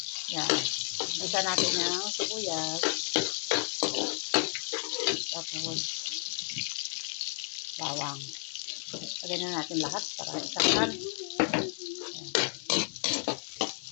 Yan. Isa natin yung sibuyas. Tapos bawang. Lagyan na natin lahat para isahan.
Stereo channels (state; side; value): silent; right; 56 dB below the other